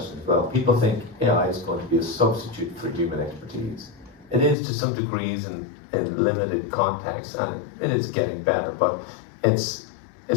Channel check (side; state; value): right; drops out; at 4.5 s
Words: as well. People think AI is going to be a substitute for human expertise. It is to some degrees in limited context, and it is getting better, but it's